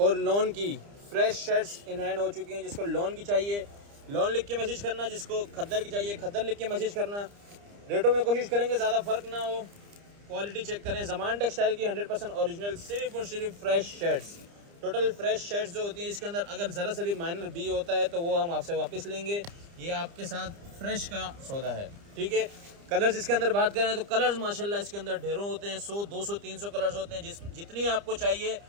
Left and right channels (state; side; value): late; left; 30 ms